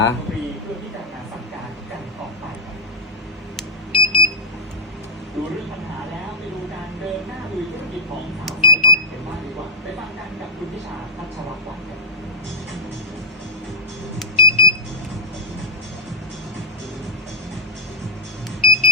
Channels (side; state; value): both; normal; correlation -0.14